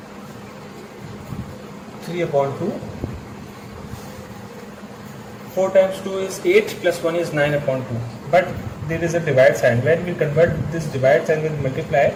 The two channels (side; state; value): both; identical; correlation 1.00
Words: 3 upon 2. 4 times 2 is 8 plus 1 is 9 upon 2. But there is a divide sign. When we convert this divide sign with multiply,